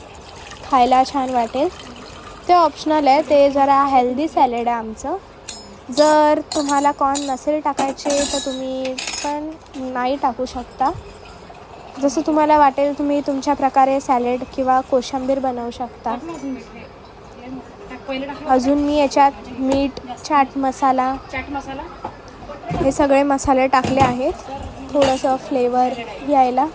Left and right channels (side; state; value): both; identical; correlation 1.00